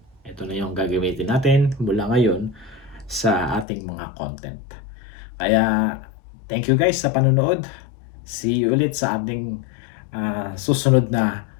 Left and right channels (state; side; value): drops out; right; at 3.7 s